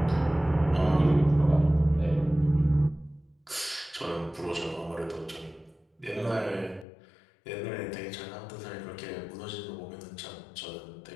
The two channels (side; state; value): right; drops out; at 6.9 s